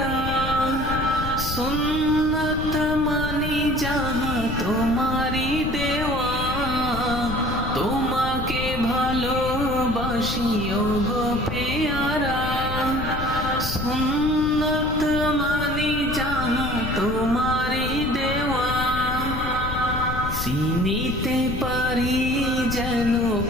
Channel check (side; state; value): left; noise; rumble, 5 dB below the sound